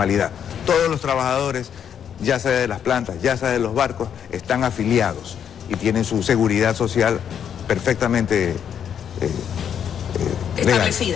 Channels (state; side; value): quieter; right; 8.5 dB